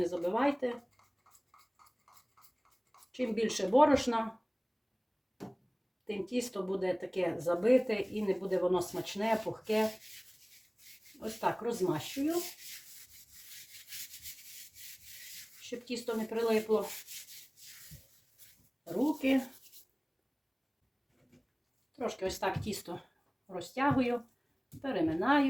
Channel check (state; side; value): identical; both; correlation 1.00